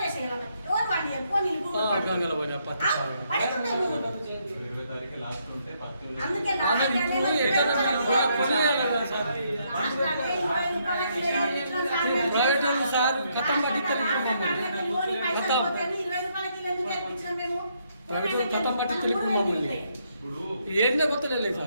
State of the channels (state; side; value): inverted; both; correlation -0.74